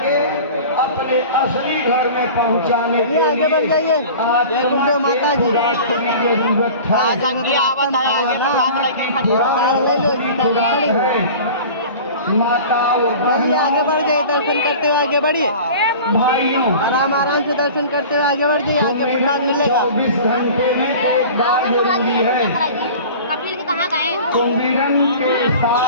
अपने असली घर में पहुंचाने के आगे बढ़ लिए जाइए। आत्मा के खुराक की जरूरत है। माताओं चलिए आगे बढ़ जाइए, दर्शन करते हुए आगे बढ़िए। भाइयों, आराम आराम से दर्शन करते हुए आगे बढ़ जाइए, आगे प्रसाद मिलेगा। 24 घंटे में एक बार जरूरी है। कपिल के कहाँ गए? सुमिरन के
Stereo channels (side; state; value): both; inverted; correlation -0.39